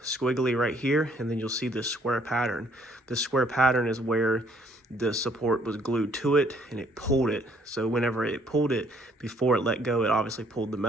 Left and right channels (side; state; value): both; normal; correlation 0.64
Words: squiggly right here, and then you'll see this square pattern. This square pattern is where the support was glued to it and it pulled it. So whenever it pulled it, before it let go, it obviously pulled the